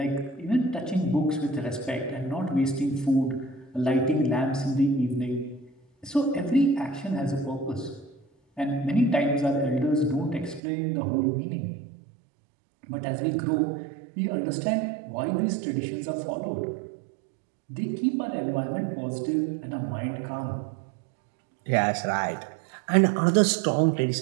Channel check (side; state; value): left; drops out; at 10.6 s